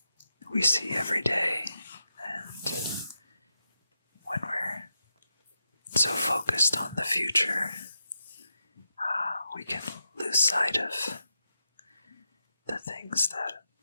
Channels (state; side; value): inverted; both; correlation -0.87